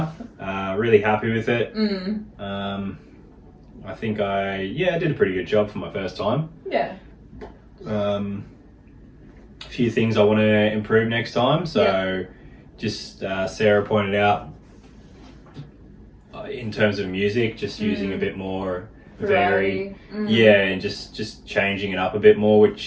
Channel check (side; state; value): both; identical; correlation 1.00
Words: Really happy with it. I think I did a pretty good job for my first time. Yeah. A few things I want to improve next time. So just Sarah pointed out in terms of music, just using a bit more variety. And just changing it up a bit more,